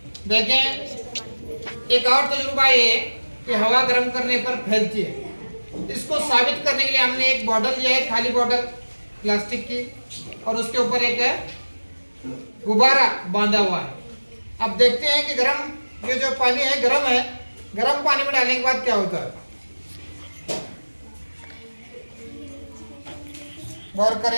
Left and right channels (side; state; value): both; inverted; correlation -1.00